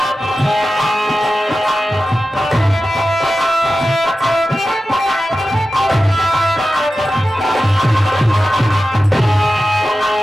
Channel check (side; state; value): both; normal; correlation 0.93